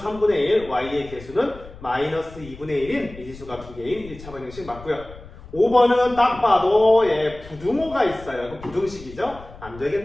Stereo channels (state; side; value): noise; left; rumble, 17 dB below the sound